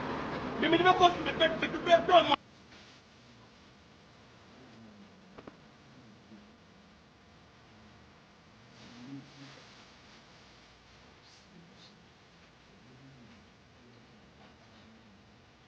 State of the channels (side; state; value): both; identical; correlation 1.00